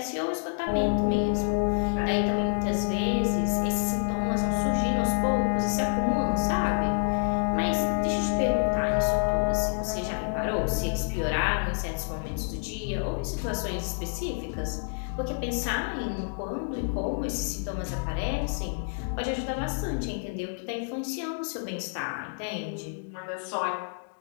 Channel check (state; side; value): silent; right; digital silence